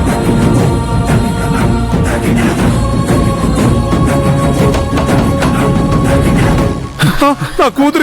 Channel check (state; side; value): identical; both; correlation 1.00